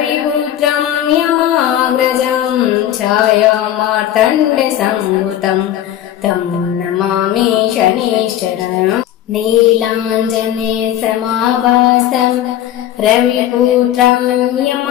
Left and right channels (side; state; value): right; quieter; 11.8 dB